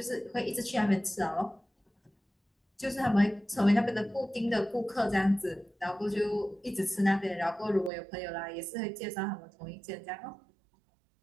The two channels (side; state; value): left; drops out; at 7.9 s